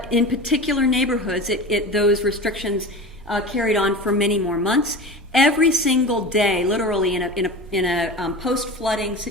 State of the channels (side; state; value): both; normal; correlation 0.31